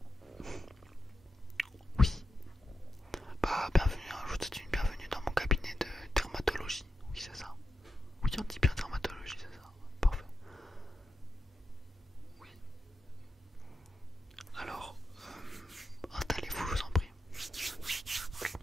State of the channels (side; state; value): both; normal; correlation 0.88